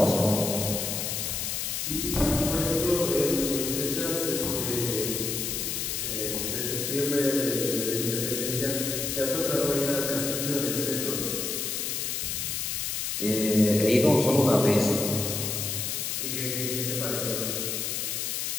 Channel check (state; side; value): noise; left; hiss, 2 dB below the sound